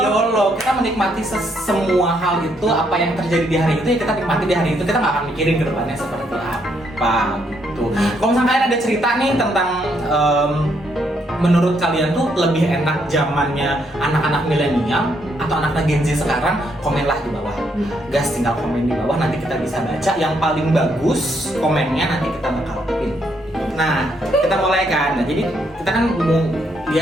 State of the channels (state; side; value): normal; both; correlation 0.74